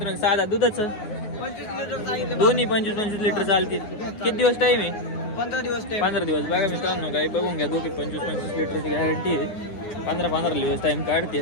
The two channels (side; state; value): right; late; 9.6 ms